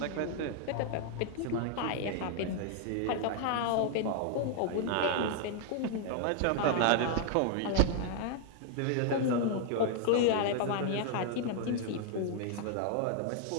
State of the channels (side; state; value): both; different; correlation 0.00